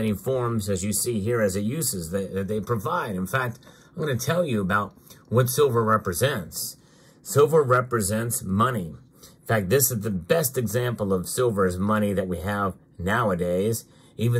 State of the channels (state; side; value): identical; both; correlation 1.00